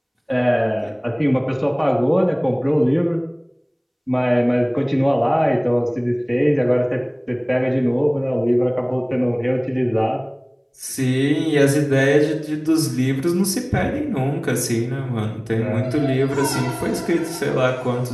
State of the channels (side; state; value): both; identical; correlation 1.00